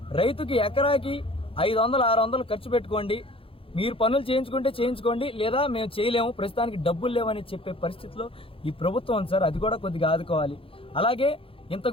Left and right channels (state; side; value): late; right; 0.27 ms